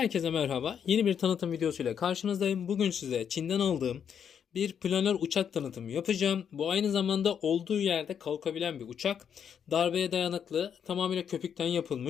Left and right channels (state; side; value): quieter; right; 7.9 dB